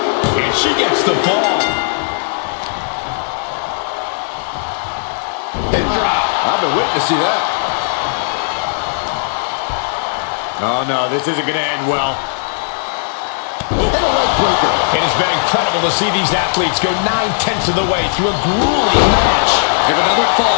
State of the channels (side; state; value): right; silent; 69 dB below the other